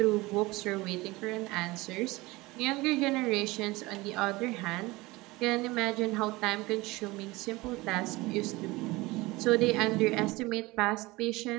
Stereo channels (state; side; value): quieter; left; 21.5 dB